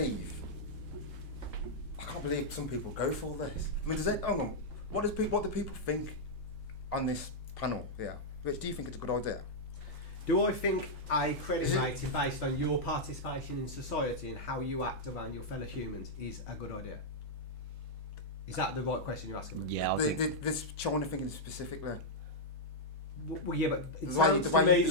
can't believe some people go for this. I mean, hang on, what do people think on this panel? Yeah, Rich, do you think it's a good idea? Do I think a credit rating based on your participation in society and how you act around your fellow humans is a good idea? Is that the right question you're asking me? Yeah, This China thinking specifically. Well, yeah, but it The way- sounds the to way you me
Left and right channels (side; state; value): both; normal; correlation -0.05